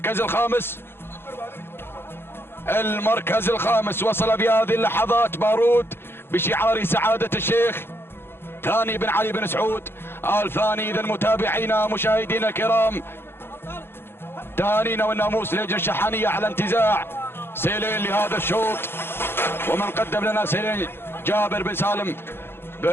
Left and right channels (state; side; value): late; right; 0.11 ms